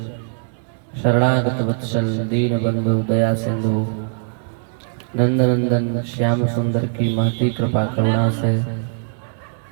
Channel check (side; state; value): left; silent; 63 dB below the other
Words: शरणागत वत्सल दीन बंधु दया सिंधु नंदनंदन श्याम सुंदर की महती कृपा करुणा से